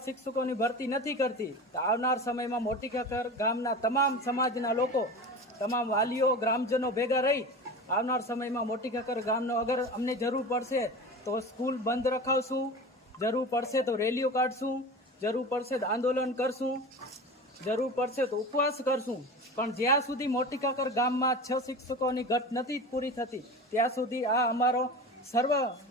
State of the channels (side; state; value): both; normal; correlation 0.31